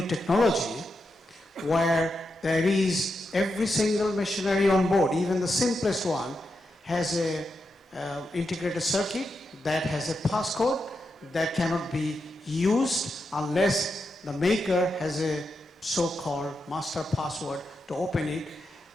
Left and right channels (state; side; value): normal; both; correlation 0.86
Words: technology, where there is every single machinery on board, even the simplest one, has a integrated circuit that has a passcode that cannot be used unless the maker has a so-called master password to open it.